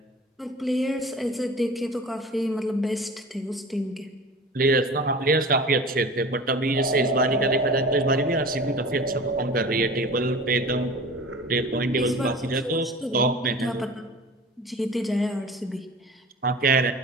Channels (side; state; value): both; normal; correlation 0.38